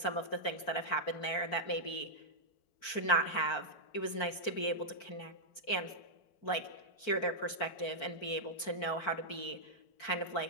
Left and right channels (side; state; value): right; late; 4.5 ms